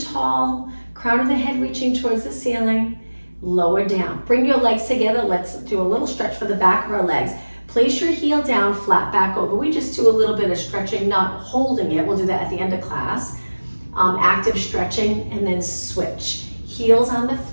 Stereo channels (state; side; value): inverted; both; correlation -1.00